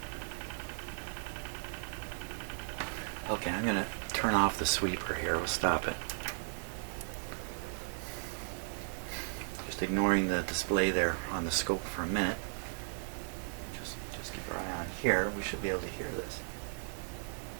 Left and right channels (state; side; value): silent; left; digital silence